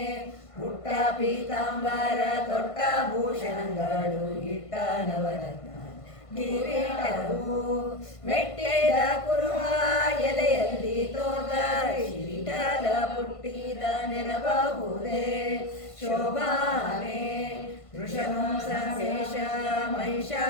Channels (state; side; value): late; right; 1.5 ms